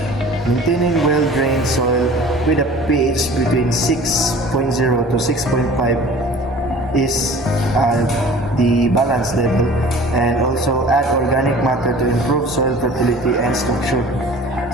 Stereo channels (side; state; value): both; normal; correlation 0.45